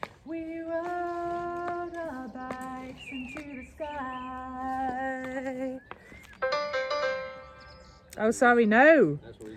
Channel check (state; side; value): identical; both; correlation 1.00